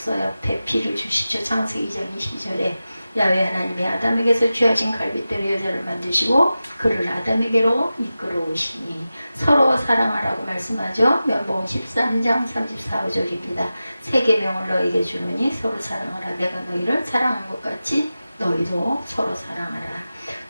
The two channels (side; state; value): both; inverted; correlation -0.94